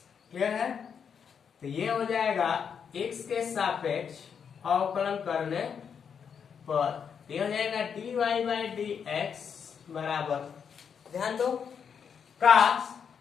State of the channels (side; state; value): right; quieter; 7.1 dB